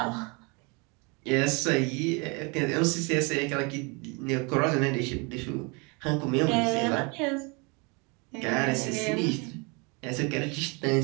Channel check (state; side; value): quieter; left; 30.5 dB